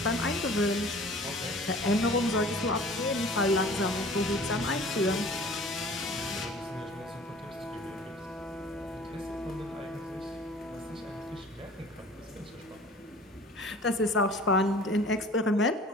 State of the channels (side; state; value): both; normal; correlation 0.46